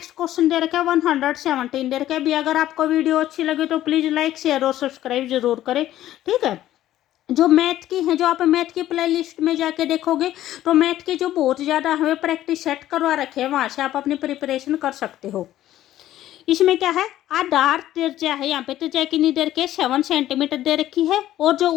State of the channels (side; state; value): right; quieter; 13.4 dB